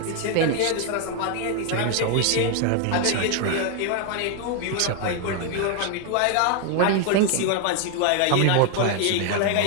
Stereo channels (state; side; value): different; both; correlation 0.00